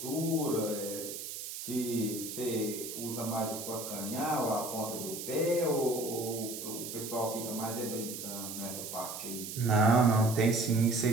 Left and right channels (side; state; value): right; noise; hiss, 8 dB below the sound